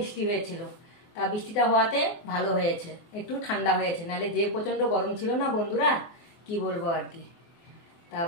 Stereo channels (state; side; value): late; right; 24 ms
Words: হয়েছিল। তা বৃষ্টিটা হওয়াতে ভালো হয়েছে, একটু ঠান্ডা হয়েছে, নাহলে যে প্রচণ্ড গরম ছিল না বন্ধুরা, কি বলবো আর কি। তা